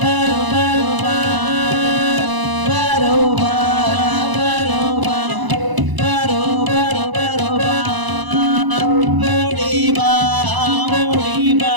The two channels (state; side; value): late; left; 1.0 ms